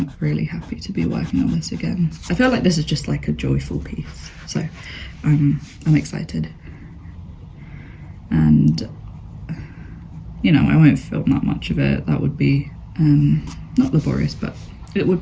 really happy to be working on this again. I feel like this is just like a joyful piece, so I'm excited. And, you know, I won't film that much of it. That would be not laborious, but it would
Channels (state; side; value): identical; both; correlation 1.00